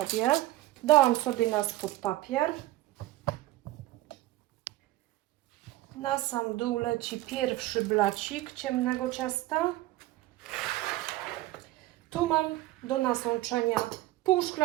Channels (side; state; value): left; quieter; 16.7 dB